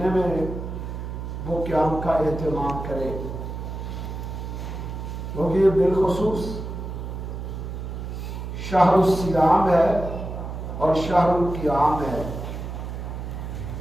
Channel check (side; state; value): right; noise; hum, 7 dB below the sound